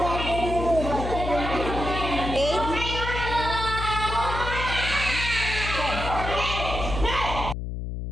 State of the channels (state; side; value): noise; left; hum, 5 dB below the sound